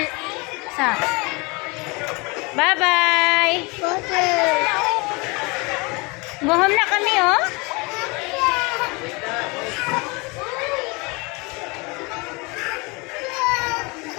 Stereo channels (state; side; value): quieter; right; 27.5 dB